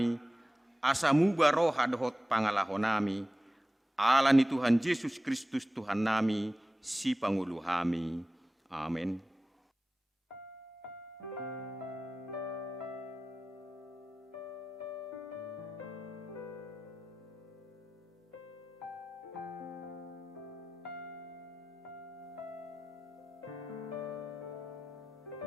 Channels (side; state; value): both; normal; correlation 0.95